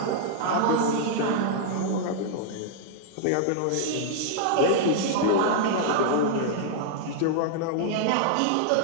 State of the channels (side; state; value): both; different; correlation -0.01